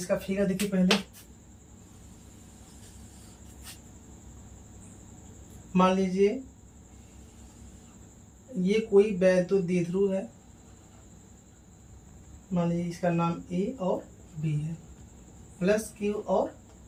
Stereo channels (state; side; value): identical; both; correlation 1.00